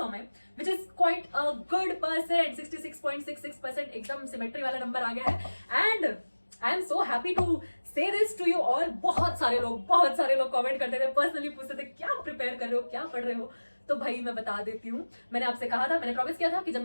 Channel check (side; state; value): both; inverted; correlation -1.00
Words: में, which is quite a good percent, 66.66% एकदम सिमेट्री वाला नंबर आ गया है. And I am so happy to say this to you all. बहुत सारे लोग कमेंट करते थे, पर्सनली पूछते थे क्या प्रिपेयर कर रहे हो, क्या पढ़ रहे हो. तो भाई मैं बता देती हूँ, मैंने आपसे कहा था, मैंने प्रॉमिस किया था कि जब